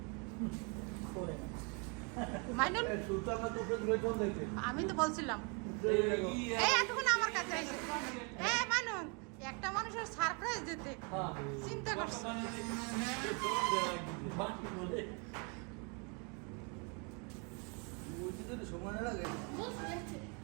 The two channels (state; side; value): quieter; left; 34.2 dB